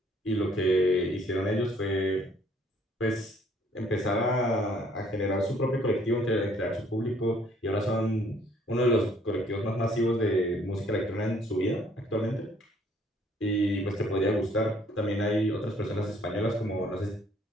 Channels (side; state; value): both; normal; correlation 0.62